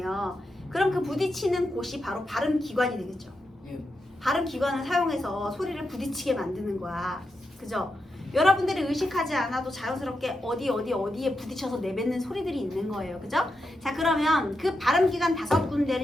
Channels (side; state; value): both; normal; correlation 0.86